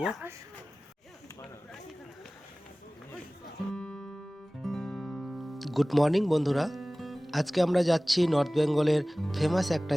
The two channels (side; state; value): both; normal; correlation 0.98